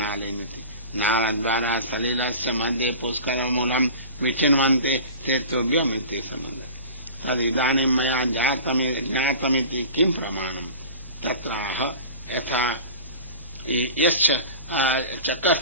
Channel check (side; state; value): both; inverted; correlation -0.35